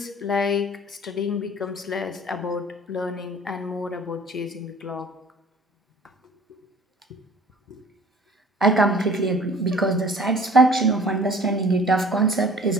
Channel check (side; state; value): both; normal; correlation 0.49